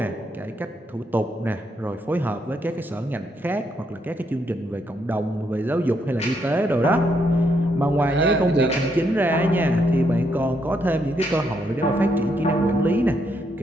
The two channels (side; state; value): both; normal; correlation 0.76